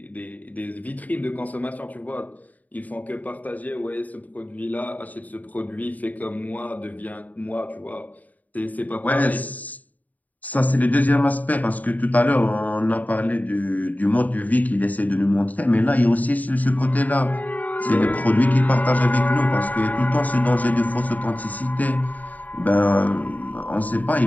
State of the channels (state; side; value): late; right; 0.077 ms